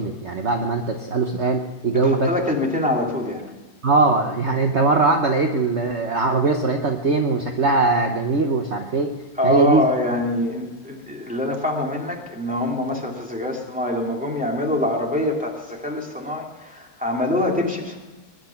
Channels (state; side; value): normal; both; correlation -0.01